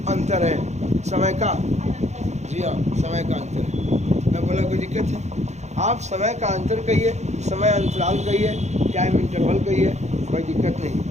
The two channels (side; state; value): left; late; 0.33 ms